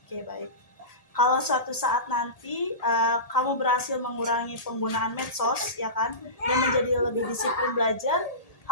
baik. Kalau suatu saat nanti kamu berhasil mengurangi penggunaan medsos, ya kan, dan menjadi lebih disiplin belajar,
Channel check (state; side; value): late; right; 1.8 ms